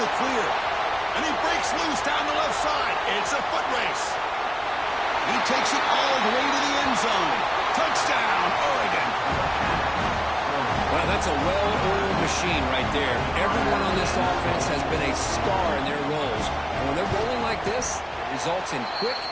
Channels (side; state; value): both; identical; correlation 1.00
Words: clear. And he breaks loose down the left side. It's a foot race. He takes it all the way to the end zone. Touchdown, Oregon. Well, that's a well-oiled machine right there. Everyone on this offense has been a star in their roles. And when they're rolling like this, it results in quick